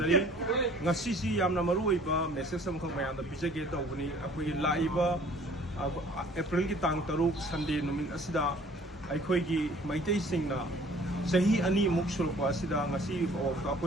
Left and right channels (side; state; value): both; normal; correlation 0.53